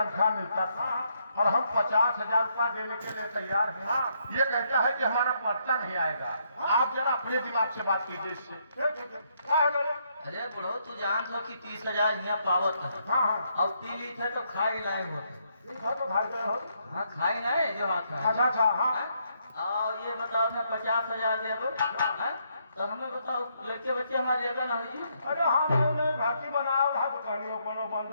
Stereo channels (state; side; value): inverted; both; correlation -0.74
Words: मिलता था और हम 50,000 रुपया देने के लिए तैयार हैं। ये कहता है कि हमारा पर्चा नहीं आएगा। आप जरा अपने दिमाग से बात कीजिए इससे। अरे बुढ़ो तू जान लो कि 30,000 यहाँ पावत है। हाँ अब पी ली थे तो खाई लाए होते। तो भाई गए हो। हाँ खाई नहीं जो हाथ है। अच्छा हाँ। और ये बताओ मैं 50,000 देबो तो हमें बताओ लड़के बच्चे हमारे लेगा ना हुई। अरे हमने भर्ती बनाया रहा तो कहानियों कोनो